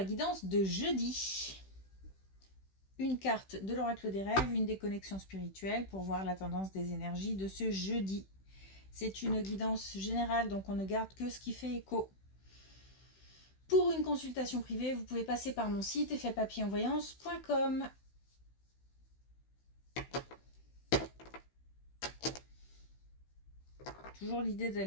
guidance de jeudi. Une carte de l'oracle des rêves, une déconnexion spirituelle pour voir la tendance des énergies de ce jeudi. C'est une guidance générale, donc on ne garde que ce qui fait écho. Pour une consultation privée, vous pouvez passer par mon site effetpapillonvoyance.com. Toujours l'idée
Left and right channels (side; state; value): right; late; 16 ms